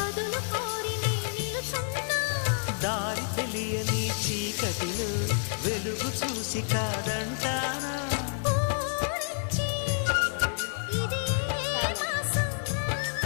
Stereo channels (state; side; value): silent; right; digital silence